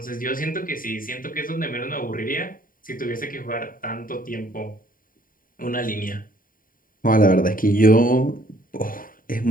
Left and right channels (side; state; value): right; late; 0.41 ms